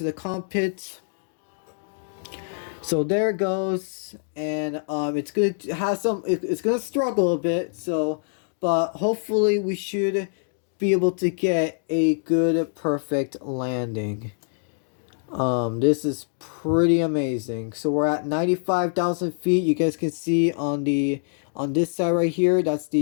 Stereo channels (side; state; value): right; silent; digital silence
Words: the cockpit? So there it goes, and it's gonna have it's gonna struggle a bit, so, but hopefully we should be able to get a good, perfect landing. This is pretty amazing. So we're at 95,000 feet. You guys can see on this side right here, that's